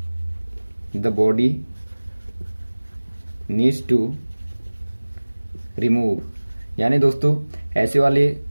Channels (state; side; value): inverted; both; correlation -1.00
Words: the body needs to remove, यानी दोस्तों ऐसे वाले